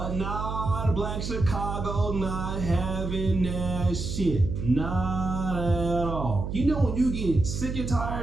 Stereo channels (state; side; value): noise; right; hum, 4 dB below the sound